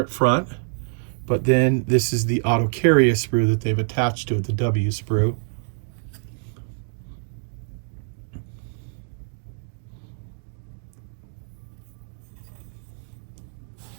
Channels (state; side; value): silent; left; 62 dB below the other